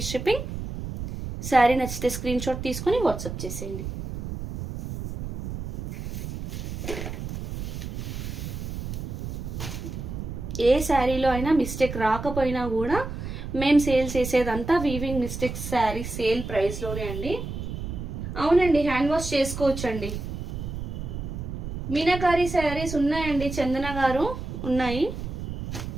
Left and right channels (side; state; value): right; noise; rumble, 6 dB below the sound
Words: shipping. Sari నచ్చితే స్క్రీన్ షాట్ తీసుకొని వాట్సాప్ చేసేయండి. ఏ శారీలో అయినా మిస్టేక్ రాకపోయినా కూడా మేము సేల్ చేసేదంతా వీవింగ్ మిస్టేక్స్ శారీ సేల్ ప్రైస్లోనే అండి. అవునండి, హ్యాండ్ వాష్ చేసుకోవచ్చండి. మీనాకారి శారీస్ ఉన్నాయండి, చందన గారు ఉన్నాయి.